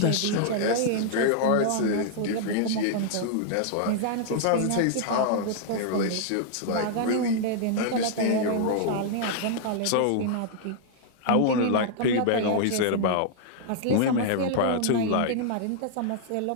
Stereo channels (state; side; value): different; both; correlation -0.01